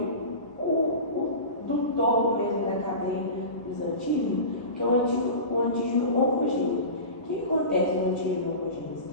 do topo mesmo da cadeia dos antígenos, que é o antígeno oncogênico. O que acontece no antígeno oncogênico?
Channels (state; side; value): inverted; both; correlation -0.31